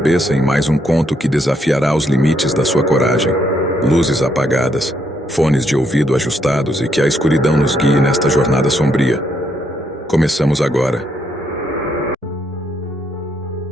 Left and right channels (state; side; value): normal; both; correlation 0.74